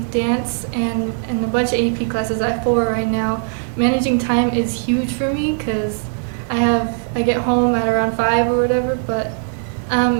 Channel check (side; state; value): left; silent; digital silence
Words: dance and a bunch of AP classes, I have 4 right now, managing time is huge for me, because I get home at around 5 or whatever, but